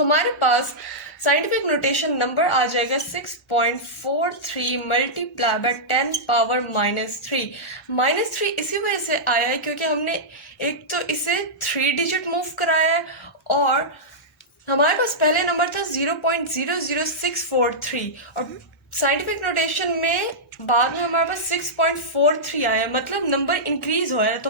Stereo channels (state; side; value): normal; both; correlation -0.12